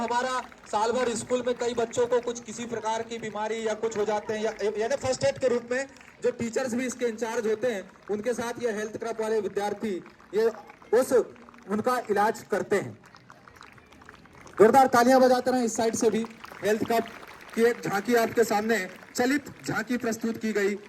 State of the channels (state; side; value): identical; both; correlation 1.00